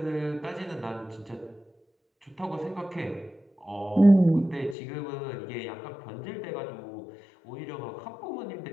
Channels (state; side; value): drops out; right; at 4.8 s